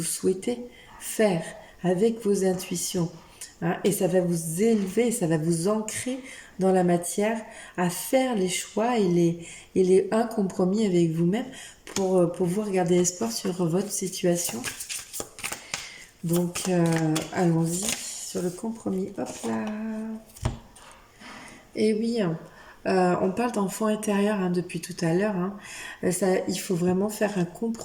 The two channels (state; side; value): identical; both; correlation 1.00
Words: souhaitez faire avec vos intuitions, hein. Et ça va vous élever, ça va vous ancrer dans la matière à faire les choix et les un compromis avec vous-même pour pouvoir garder espoir sur votre situation. Donc, allons-y sur le compromis. Hop là. Et oui, on parle d'enfant intérieur, hein, depuis tout à l'heure, hein. Il faut vraiment faire un